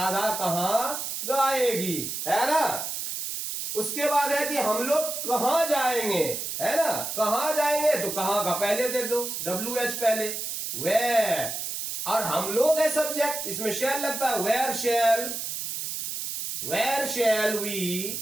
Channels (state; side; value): noise; right; hiss, 4 dB below the sound